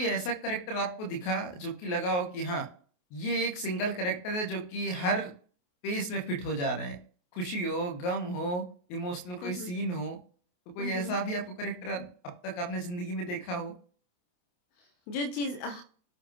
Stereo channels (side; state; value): right; late; 28 ms